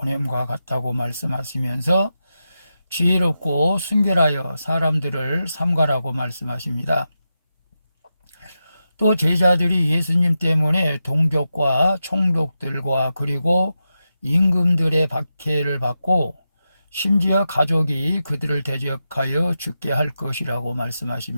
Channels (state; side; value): inverted; both; correlation -0.89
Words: 같다고 말씀하시면서 지혜롭고 순결하여 사람들을 삼가라고 말씀하십니다. 또 제자들이 예수님 때문에 동족과 총독들과 그리고 임금들의 박해를 받고 심지어 가족이 그들을 대적하여 죽게 할 것이라고